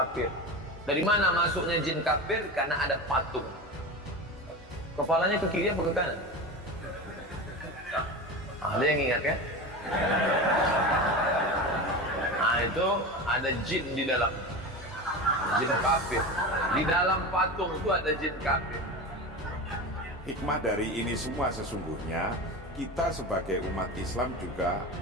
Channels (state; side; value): normal; both; correlation 0.26